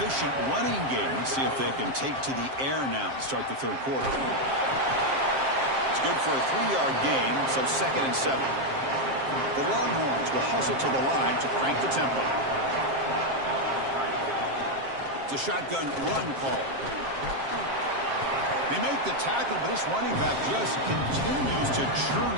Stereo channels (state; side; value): late; left; 7.5 ms